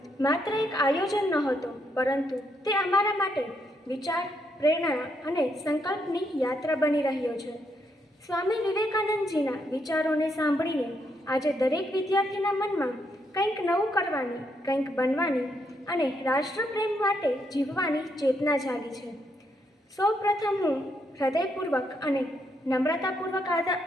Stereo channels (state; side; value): normal; both; correlation 0.77